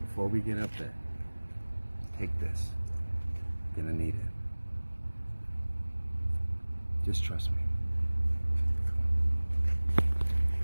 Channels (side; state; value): both; inverted; correlation -1.00